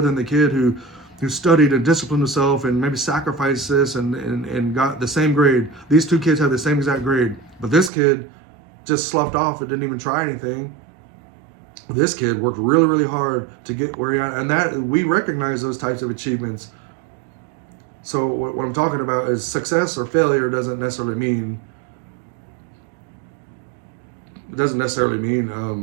than the kid who studied and disciplined himself and maybe sacrificed this and got the same grade? These two kids have the same exact grade, but this kid just sloughed off and didn't even try anything. This kid worked really, really hard to get where he at, and that we recognize those types of achievements. So what I'm talking about is success or failure doesn't necessarily mean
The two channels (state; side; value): drops out; left; at 7.9 s